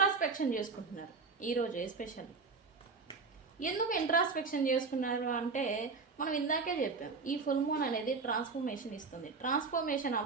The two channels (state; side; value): quieter; left; 4.5 dB